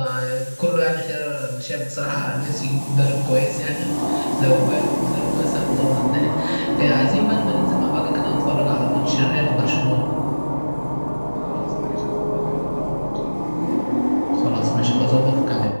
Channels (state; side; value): inverted; both; correlation -1.00